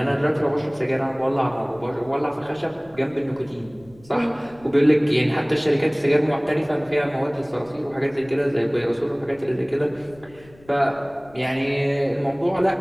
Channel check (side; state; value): left; noise; rumble, 25 dB below the sound